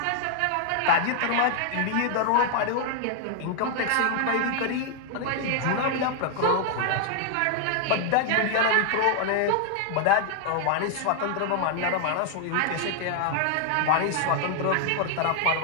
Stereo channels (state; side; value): different; both; correlation 0.00